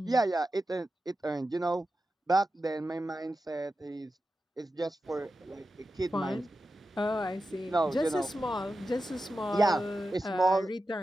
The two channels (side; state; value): both; normal; correlation 0.91